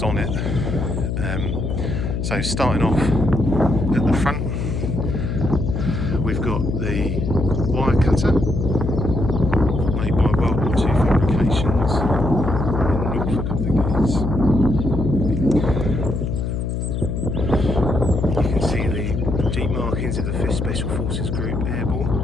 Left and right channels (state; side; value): noise; left; hum, 2 dB below the sound